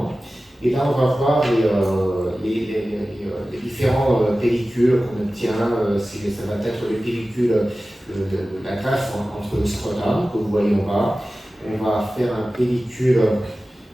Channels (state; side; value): normal; both; correlation 0.96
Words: Et là, on va voir les différents pellicules qu'on obtient. Ça va être les pellicules de la greffe entre le scrotum, que vous voyez en bas. On va faire un pellicule